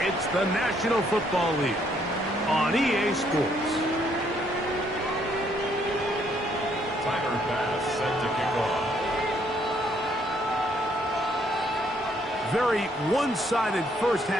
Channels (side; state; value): both; normal; correlation 0.69